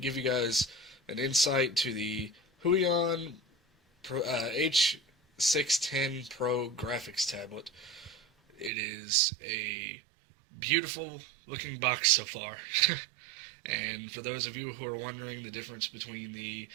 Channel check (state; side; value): drops out; left; at 8.7 s